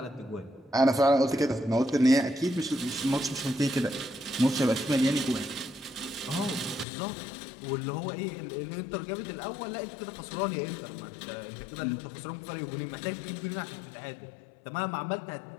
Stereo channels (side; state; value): right; drops out; at 6.9 s